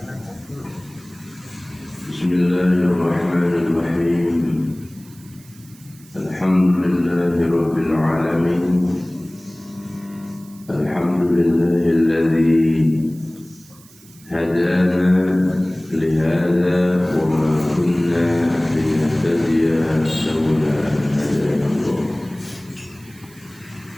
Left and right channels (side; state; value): right; noise; hiss, 25 dB below the sound